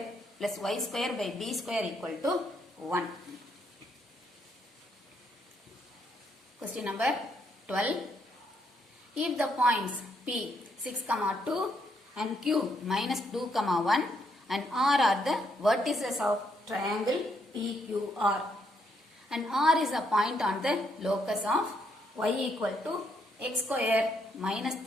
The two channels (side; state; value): both; normal; correlation 0.74